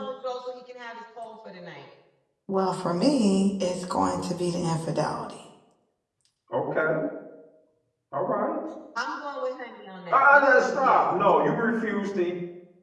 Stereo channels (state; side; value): identical; both; correlation 1.00